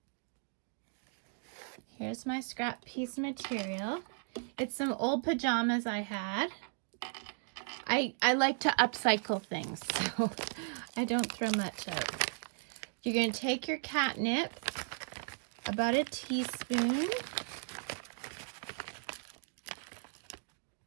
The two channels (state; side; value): silent; left; 54 dB below the other